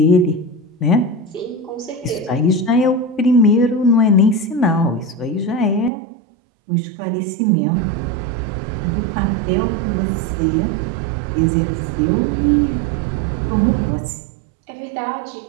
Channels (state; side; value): drops out; left; at 5.9 s